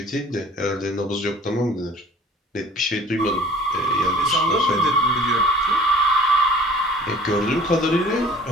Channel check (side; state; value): both; normal; correlation 0.49